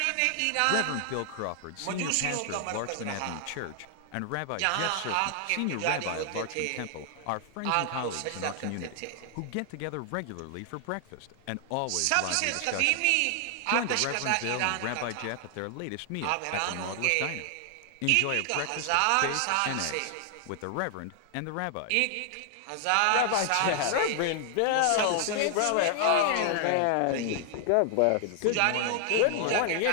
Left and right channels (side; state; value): both; different; correlation 0.00